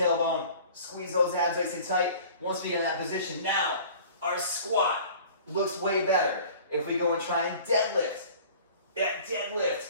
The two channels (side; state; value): both; inverted; correlation -0.46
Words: squeeze those abs nice and tight. Once we get in that position, now our squat looks way better. If we go and try and deadlift,